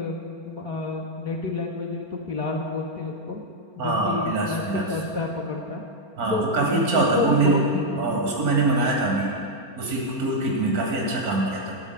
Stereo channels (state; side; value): late; left; 4.4 ms